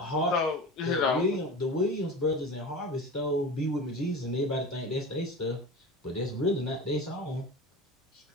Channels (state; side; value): normal; both; correlation 0.31